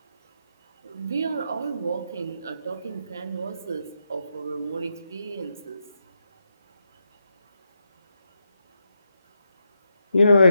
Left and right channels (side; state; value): both; inverted; correlation -0.83